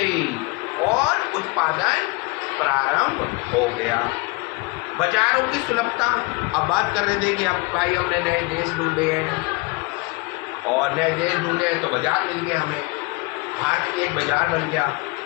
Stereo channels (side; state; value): right; quieter; 25.6 dB